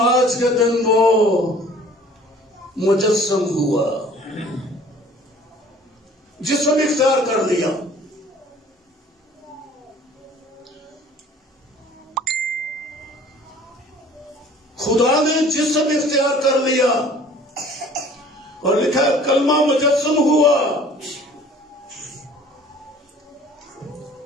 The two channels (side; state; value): both; normal; correlation 0.50